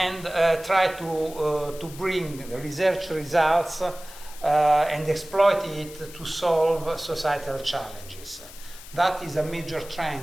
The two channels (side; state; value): left; noise; hiss, 17 dB below the sound